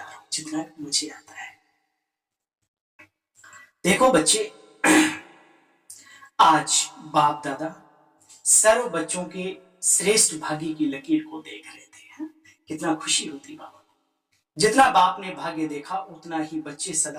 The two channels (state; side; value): identical; both; correlation 1.00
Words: हूं, जितना भी मुझे आता है। देखो बच्चे, आज बाप दादा सर्व बच्चों के श्रेष्ठ भाग्य की लकीर को देख रहे थे। कितना खुशी होती बाबा। जितना बाप ने भाग्य देखा उतना ही बच्चे सदा